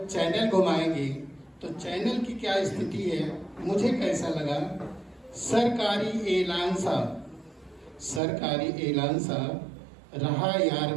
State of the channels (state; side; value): drops out; left; at 8.2 s